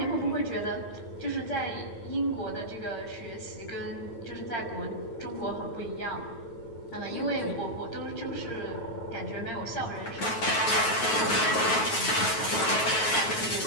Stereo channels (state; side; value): late; right; 9.3 ms